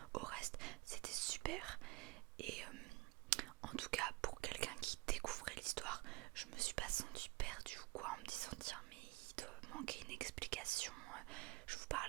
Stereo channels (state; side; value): quieter; left; 23.4 dB